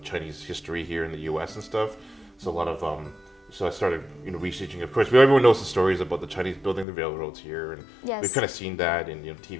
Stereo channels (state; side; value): drops out; right; at 6.9 s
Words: Chinese history here in the US and stuff. So a lot of, so I started, researching. Of course, everyone knows the stories about the Chinese building the railroads here, and we've kind of seen that in